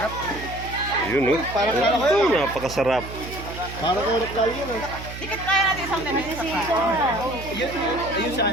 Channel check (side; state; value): right; noise; hum, 11 dB below the sound